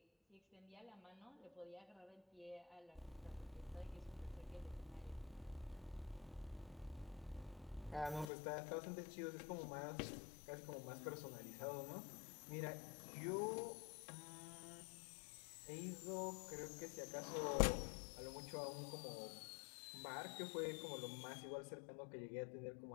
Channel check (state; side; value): drops out; right; at 8.2 s